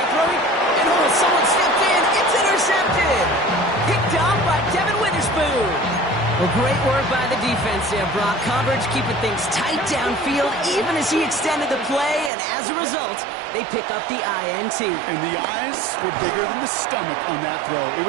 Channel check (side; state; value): left; drops out; at 12.3 s